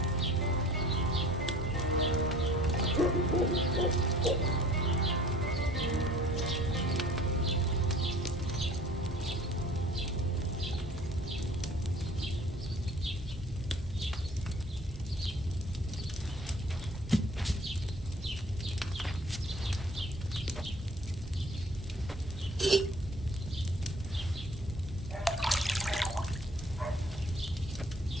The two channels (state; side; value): normal; both; correlation 0.51